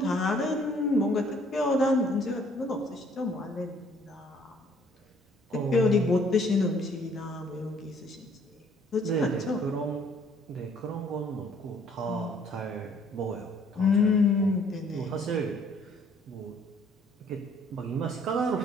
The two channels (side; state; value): both; normal; correlation 0.61